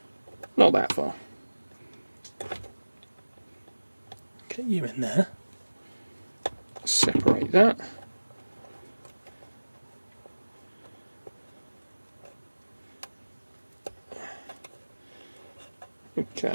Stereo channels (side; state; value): both; inverted; correlation -1.00